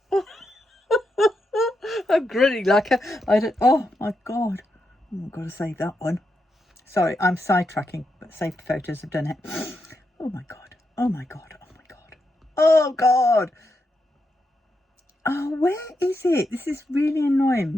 I'm grinning like I don't. Oh my god. Oh, I've got to save that one. Sorry, I'm sidetracking, but saved photos have done it. Oh my God. Oh my God. Oh my God. Oh God. Oh, where is it? This is really annoying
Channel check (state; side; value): normal; both; correlation 0.84